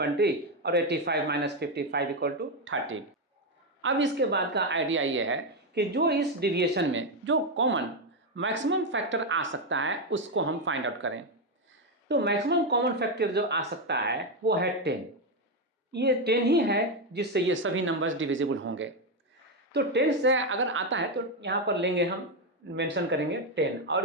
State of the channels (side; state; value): both; normal; correlation 0.06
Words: और 85 माइनस 55 इक्वल टू 30। अब इसके बाद का आइडिया ये है कि जो इस डिविएशन में जो कॉमन मैक्सिमम फैक्टर आ सकता है उसको हम फाइंड आउट करें। तो मैक्सिमम कॉमन फैक्टर जो आ सकता है वो है 10। ये 10 ही है जिससे ये सभी नंबर्स डिविजिबल होंगे। तो 10 से अगर आता है तो यहाँ पर लेंगे, हम मेंशन करेंगे 10,